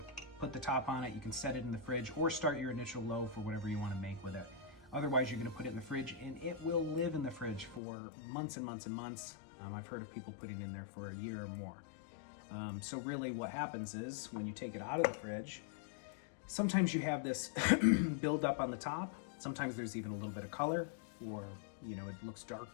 put the top on it. You can set it in the fridge or start your initial loaf or whatever you wanna make with it. Otherwise, you're gonna put it in the fridge, and it will live in the fridge for months and months and months. I've heard of people putting it in there for a year or more. So really what happens is when you take it out of the fridge, sometimes you have this build up on the top. Sometimes there's even a little bit of color, or it looks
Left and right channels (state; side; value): drops out; right; at 7.8 s